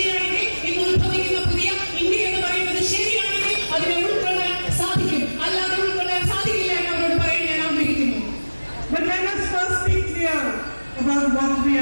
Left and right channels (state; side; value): inverted; both; correlation -1.00